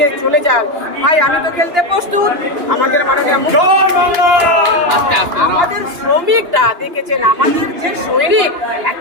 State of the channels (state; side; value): late; left; 2.8 ms